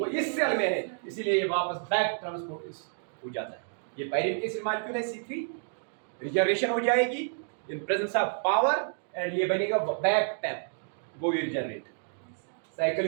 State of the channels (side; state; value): left; silent; digital silence